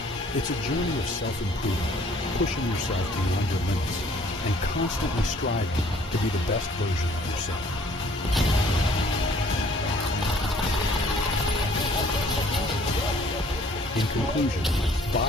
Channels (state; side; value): normal; both; correlation 0.57